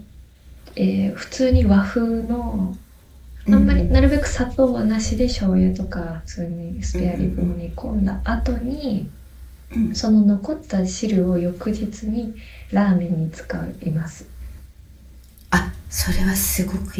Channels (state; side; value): identical; both; correlation 1.00